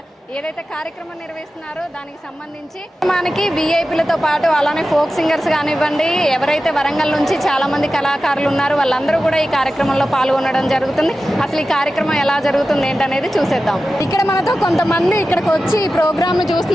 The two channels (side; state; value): both; normal; correlation 0.94